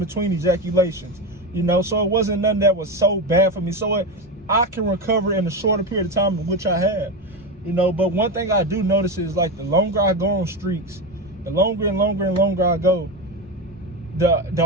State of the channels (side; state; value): both; normal; correlation 0.17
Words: ejaculations, you know, so it wasn't nothing that was so bad for me. So I can recover in a shorter period of time in which I have, you know. But one thing I do notice is like the longer I go on streaks, the longer and longer and longer I go,